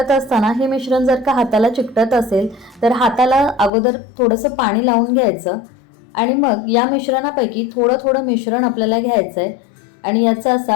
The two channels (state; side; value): drops out; right; at 3.7 s